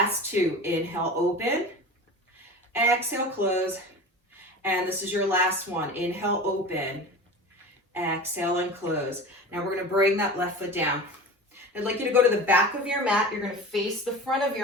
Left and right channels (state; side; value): normal; both; correlation 0.34